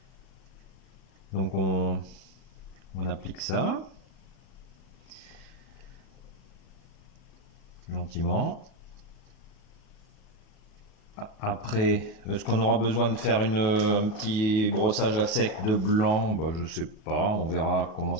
Donc on applique ça. Gentiment. Après, est-ce qu'on aura besoin de faire un petit brossage à sec de blanc? Je sais pas, on verra comment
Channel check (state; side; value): late; right; 37 ms